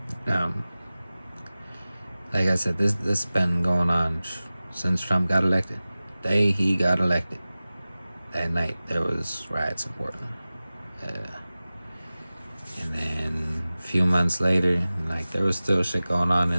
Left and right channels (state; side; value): inverted; both; correlation -0.97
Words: Like I said, this been going on since Trump got elected. The day he got elected, that night there was riots in Portland. And then a few months later, there was still shit going on,